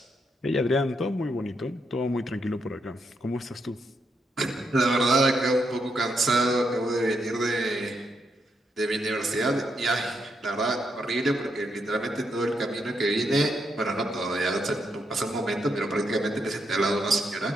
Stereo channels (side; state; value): both; normal; correlation 0.80